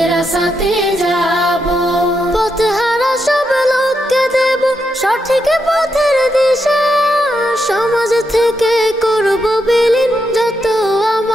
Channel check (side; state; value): both; normal; correlation 0.83